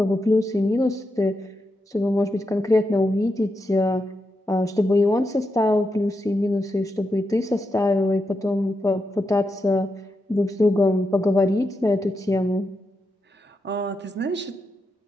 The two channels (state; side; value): normal; both; correlation 0.86